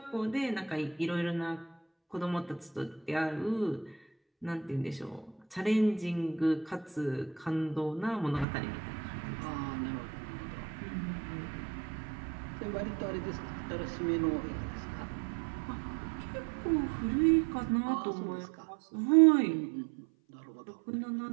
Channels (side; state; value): left; drops out; at 8.5 s